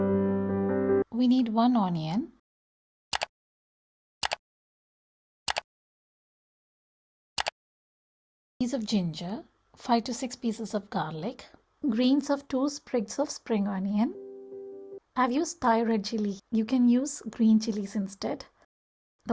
We need 1 onion, piece of ginger, 5 to 6 pieces of garlic, greens of 2 sprigs of spring onion. I've used Thai red chilli. You can use green chilies instead.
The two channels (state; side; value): identical; both; correlation 1.00